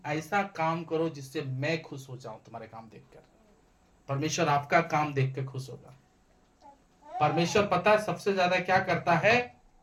ऐसा काम करो जिससे मैं खुश हो जाऊं तुम्हारे काम देखकर। परमेश्वर आपका काम देख के खुश होगा। परमेश्वर पता है सबसे ज्यादा क्या करता है?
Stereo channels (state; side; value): identical; both; correlation 1.00